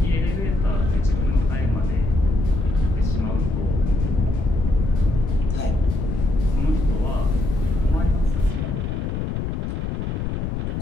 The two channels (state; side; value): noise; left; rumble, 2 dB below the sound